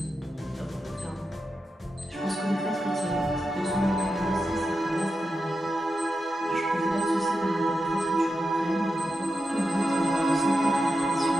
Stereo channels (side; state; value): both; normal; correlation 0.89